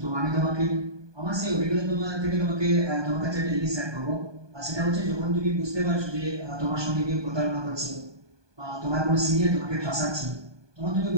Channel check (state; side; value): late; left; 1.2 ms